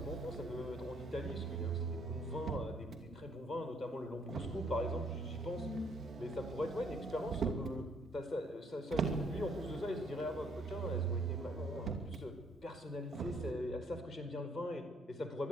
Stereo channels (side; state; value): both; normal; correlation 0.66